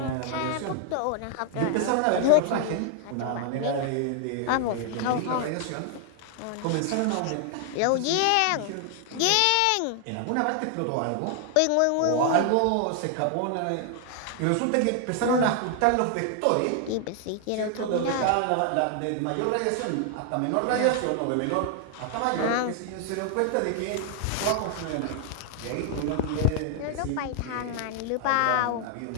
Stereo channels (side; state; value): both; different; correlation 0.00